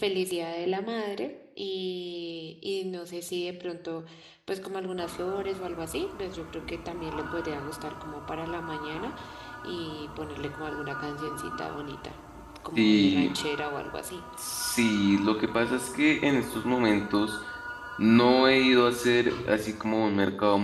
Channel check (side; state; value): both; identical; correlation 1.00